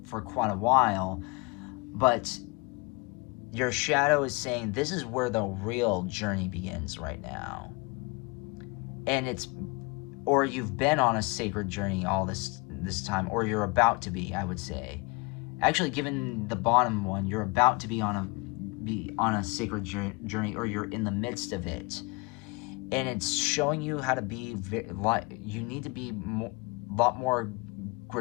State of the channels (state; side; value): quieter; right; 28.2 dB